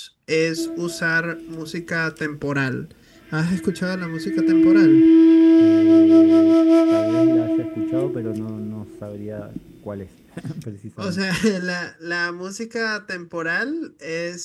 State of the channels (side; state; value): both; identical; correlation 1.00